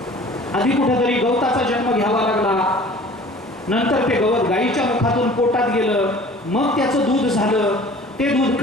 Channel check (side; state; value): both; normal; correlation 0.46